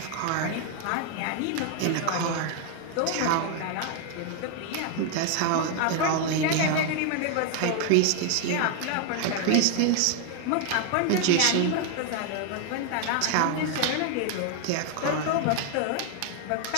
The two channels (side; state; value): both; different; correlation 0.01